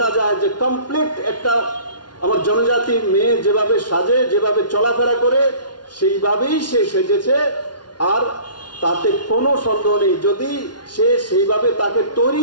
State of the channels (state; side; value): late; right; 0.70 ms